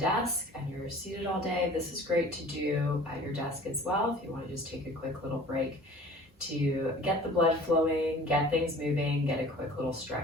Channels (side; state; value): both; normal; correlation 0.46